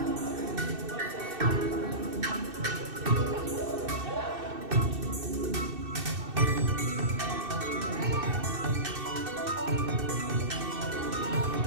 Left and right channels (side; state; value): left; late; 2.6 ms